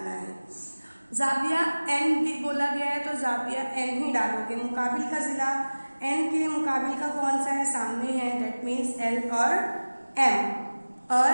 है। जाविया n भी बोला गया है तो जाविया n ही डालोगे। मुकाबिल का जिला n के मुकाबिल का कौन सा है? सामने है, दैट मीन्स l और m। और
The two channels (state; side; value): inverted; both; correlation -1.00